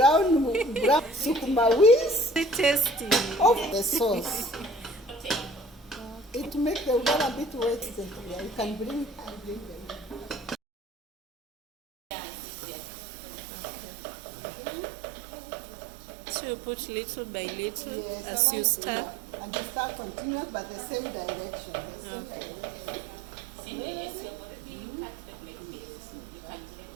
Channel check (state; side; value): drops out; left; at 10.6 s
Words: sukuma wings Very tasty. of the sauce. It makes the water a bit wet. Yeah, you can bring them. So you put little by little Yes, as you start. And you start continuous but the same direction. The same Okay. direction. yes, you've already cut the black beans. You can blend